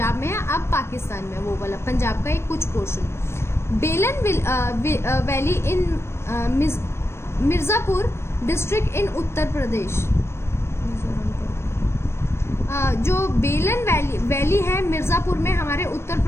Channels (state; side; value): late; right; 0.12 ms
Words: में है, अब पाकिस्तान में. वो वाला पंजाब का एक कुछ portion. Belan valley in Mirzapur district in Uttar Pradesh. जो बेलन वैली है मिर्जापुर में हमारे उत्तर